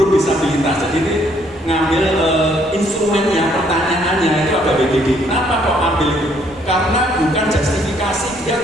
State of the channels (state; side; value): normal; both; correlation 0.66